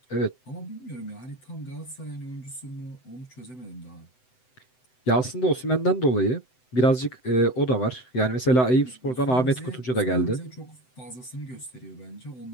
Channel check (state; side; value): late; right; 7.9 ms